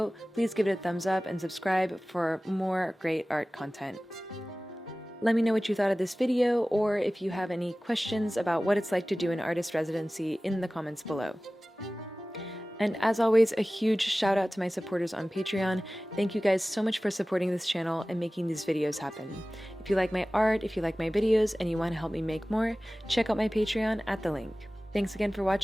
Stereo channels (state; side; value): normal; both; correlation 0.97